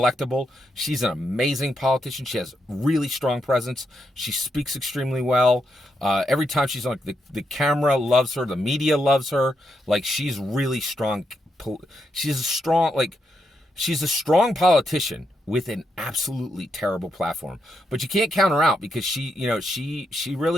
She's an amazing politician. She has really strong presence. She speaks extremely well. Every time she's on, the camera loves her. The media loves her. Like she's really strong. She's a strong politician with an absolutely terrible platform. But you can't count her out because she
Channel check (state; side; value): normal; both; correlation 0.82